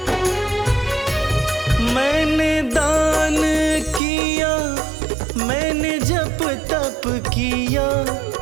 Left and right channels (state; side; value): drops out; left; at 4.0 s